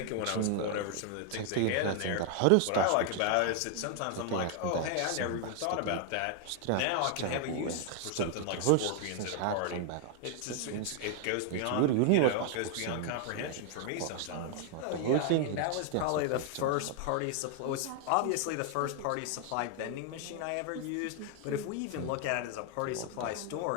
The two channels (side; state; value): both; different; correlation 0.00